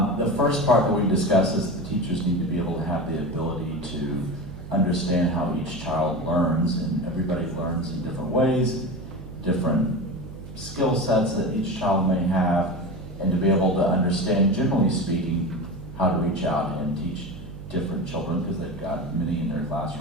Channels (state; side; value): noise; right; hum, 14 dB below the sound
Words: that. The first part that we discussed is the teachers need to be able to have the ability to understand how each child learns, and everybody learns in different ways, different skill sets that each child may have, and to be able to understand, generally speaking, how to reach out and teach different children, because they've got many in their